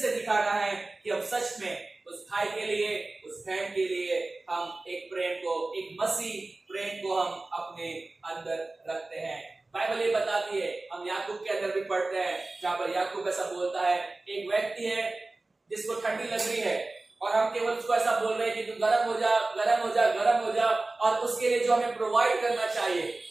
दिखाना है कि हम सच में उस भाई के लिए, उस बहन के लिए हम एक प्रेम को, एक मसीह प्रेम को हम अपने अंदर रखते हैं। बाइबल ये बताती है, हम याकूब के अंदर भी पढ़ते हैं, जहां पर याकूब ऐसा बोलता है, एक व्यक्ति है जिसको ठंडी लग रही है और हम केवल उसको ऐसा बोल रहे हैं कि तू गर्म हो जा, गर्म हो जा, गर्म हो जा, और उसके लिए जो हमें प्रोवाइड करना चाहिए,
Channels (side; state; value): left; quieter; 3.1 dB